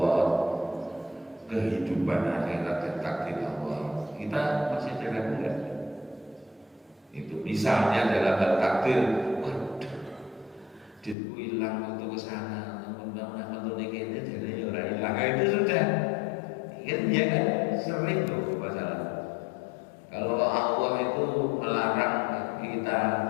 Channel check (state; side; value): drops out; right; at 11.2 s